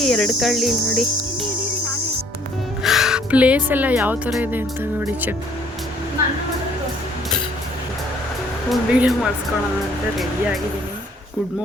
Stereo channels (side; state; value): both; normal; correlation 0.61